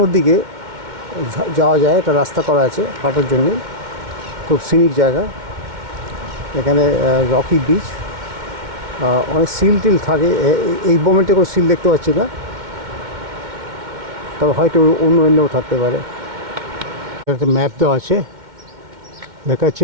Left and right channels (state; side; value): late; left; 2.1 ms